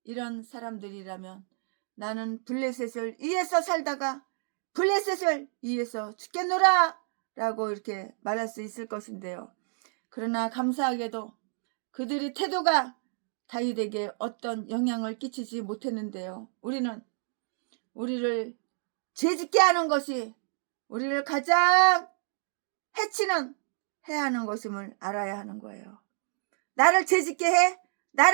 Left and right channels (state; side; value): silent; left; 58 dB below the other